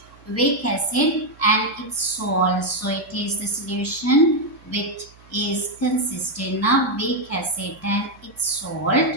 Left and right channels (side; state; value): right; noise; hum, 26 dB below the sound